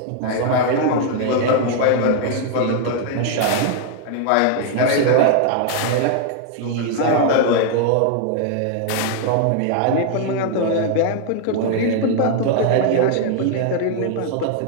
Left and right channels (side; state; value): both; different; correlation 0.00